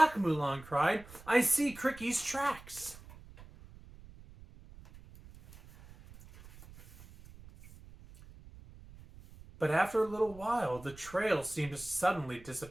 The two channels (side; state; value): right; noise; rumble, 20 dB below the sound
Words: Mulan cried. "I see Cricky's tracks." But after a little while, the trail seemed to suddenly